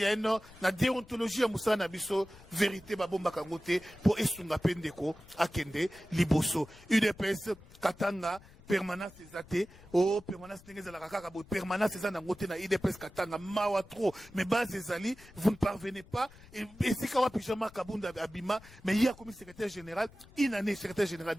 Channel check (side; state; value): left; noise; rumble, 22 dB below the sound